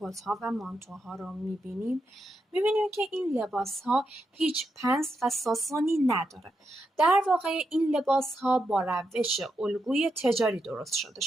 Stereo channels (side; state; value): both; normal; correlation 0.84